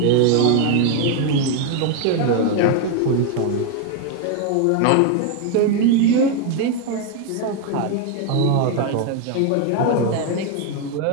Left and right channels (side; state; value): both; different; correlation 0.01